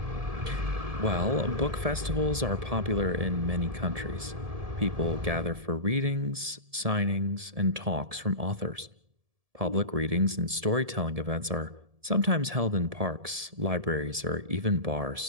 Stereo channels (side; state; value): left; late; 1.7 ms